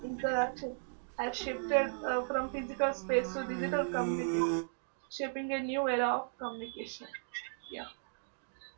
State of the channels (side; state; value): left; silent; digital silence